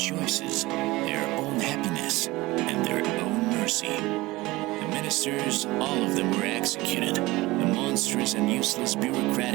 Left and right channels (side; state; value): left; quieter; 20.2 dB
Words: their own happiness, and their own mercy. The ministers, all of them were executed. The monstrous and useless